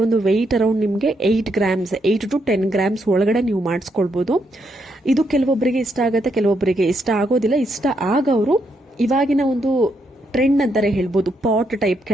ಒಂದು ವೆಯ್ಟ್ ಅರೌಂಡ್ ನಿಮಗೆ 8 ಗ್ರಾಮ್ಸ್ 8 to 10 ಗ್ರಾಮ್ಸ್ ಒಳಗಡೆ ನೀವು ಮಾಡಿಸ್ಕೊಳ್ಬಹುದು. ಇದು ಕೆಲವೊಬ್ಬರಿಗೆ ಇಷ್ಟ ಆಗುತ್ತೆ, ಕೆಲವೊಬ್ಬರಿಗೆ ಇಷ್ಟ ಆಗೋದಿಲ್ಲ. ಇಷ್ಟ ಆಗವರು ಇವಾಗಿನ ಒಂದು ಟ್ರೆಂಡ್ ಅಂತಾರೆ ಹೇಳ್ಬೋದು, ಪಾಟ್ ಟೈಪ್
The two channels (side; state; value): both; normal; correlation 0.78